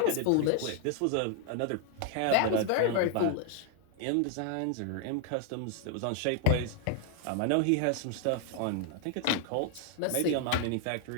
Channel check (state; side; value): different; both; correlation 0.00